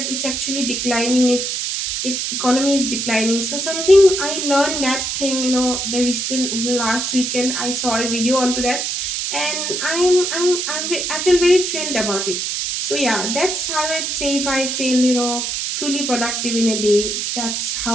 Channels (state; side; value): noise; right; hiss, 2 dB below the sound